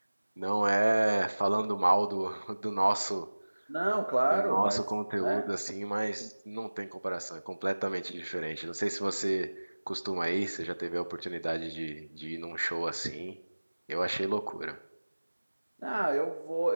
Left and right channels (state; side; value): inverted; both; correlation -1.00